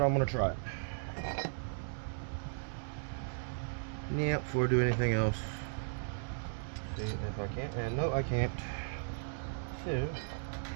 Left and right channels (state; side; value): silent; left; digital silence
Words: I'm gonna try it. Yeah, before I do anything else. See if I can. And no, I can't. So